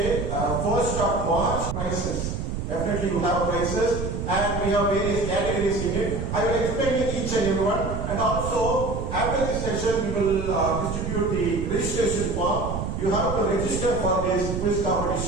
1st of March, prizes. Definitely you have prizes, and we have various categories in it. I will explain each and every one, and also after this session we will distribute the registration form. You have to register for this quiz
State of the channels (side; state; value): right; noise; rumble, 4 dB below the sound